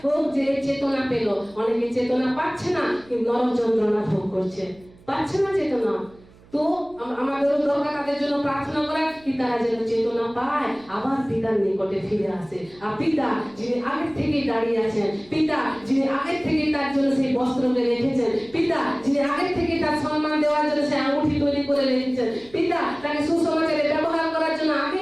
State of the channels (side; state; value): right; noise; hum, 26 dB below the sound